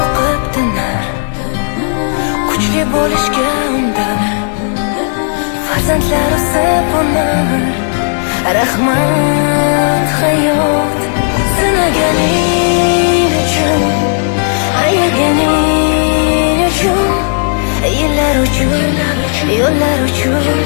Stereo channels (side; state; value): right; silent; digital silence